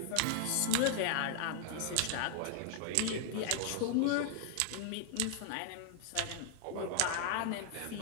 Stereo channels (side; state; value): both; different; correlation -0.01